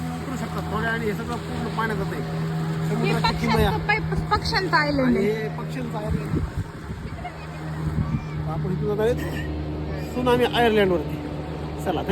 उतरू शकता थोड्या, आणि हे सगळं पूर्ण पाण्यात जात आहे. हे समुद्राची किमया पक्ष्यांचं आयलंड आणि आहे. हे पक्ष्यांचं आयर्लंड. आपण इथून जात आहेत सुनामी आयर्लंडवरती. चला,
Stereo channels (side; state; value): both; identical; correlation 1.00